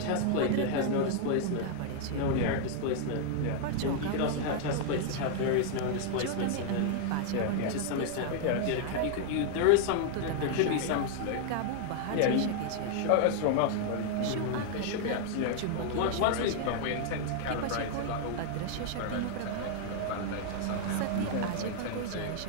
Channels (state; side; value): different; both; correlation 0.00